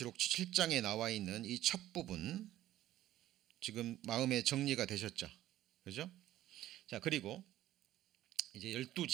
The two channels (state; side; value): quieter; left; 13.8 dB